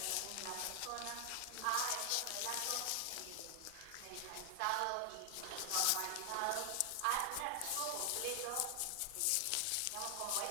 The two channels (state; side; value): different; both; correlation 0.00